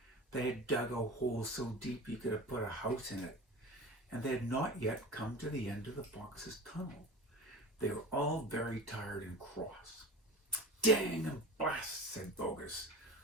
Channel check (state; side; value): normal; both; correlation 0.34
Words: They had dug a hole so deep you could have put a house in it, and they had not yet come to the end of the fox's tunnel. They were all very tired and cross. "Dang and blast," said Bogus.